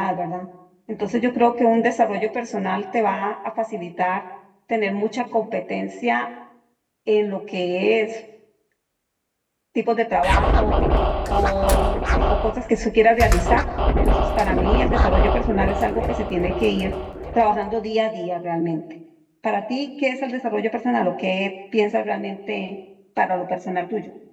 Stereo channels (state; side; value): identical; both; correlation 1.00